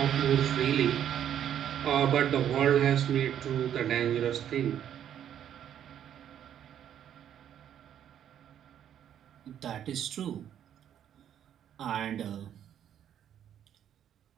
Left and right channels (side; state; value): left; quieter; 9.9 dB